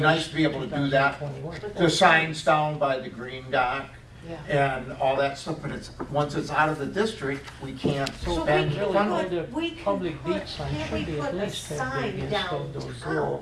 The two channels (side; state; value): both; identical; correlation 1.00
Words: nice to be able to do that. 2021. The signs down by the green dock Yeah. and all that stuff, but once it's out of the district, we can't So spend really, funds. the we can public put- beach sign can't should we be at put a least that sign big down instead of those town?